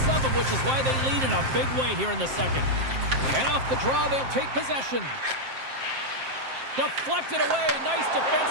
of them, which is why they lead in a big way here in the second. And off the draw, they'll take possession. Deflected away. Nice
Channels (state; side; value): late; left; 7.6 ms